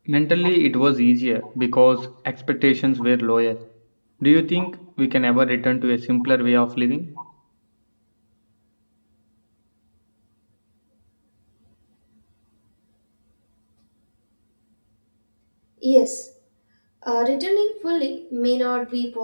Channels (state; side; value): inverted; both; correlation -1.00